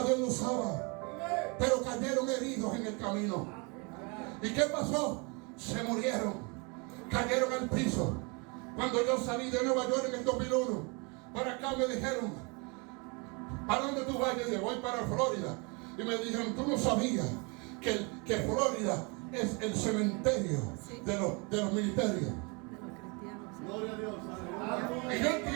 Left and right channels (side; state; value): left; quieter; 31.2 dB